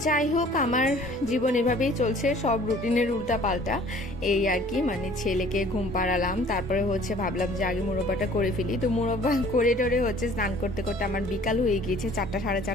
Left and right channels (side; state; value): both; normal; correlation 0.52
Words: যাই হোক, আমার জীবন এভাবেই চলছে, সব রুটিনের উল্টা পাল্টা এই আর কি। মানে ছেলেকে ঘুম পাড়ালাম, তারপরে হচ্ছে ভাবলাম যে আগে মুরব্বাটা করে ফেলি। তো মুরব্বা করে টোরে হচ্ছে স্নান করতে করতে আমার বিকাল হয়ে গিয়েছে, 4টা সাড়ে